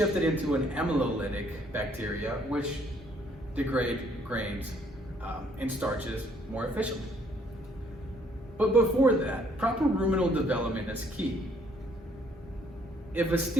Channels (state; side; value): normal; both; correlation 0.65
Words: it into an amylolytic bacteria, which degrade grains and starches more efficiently. But before that, proper ruminal development is key. If a